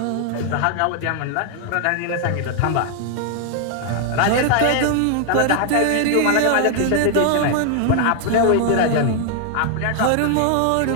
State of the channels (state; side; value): different; both; correlation 0.00